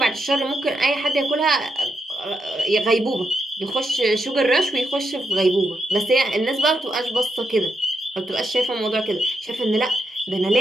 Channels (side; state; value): both; normal; correlation 0.82